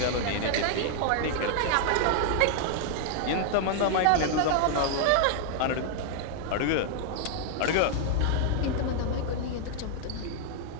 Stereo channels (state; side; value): different; both; correlation 0.00